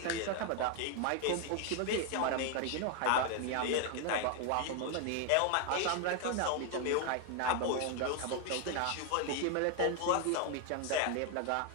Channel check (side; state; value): both; different; correlation 0.00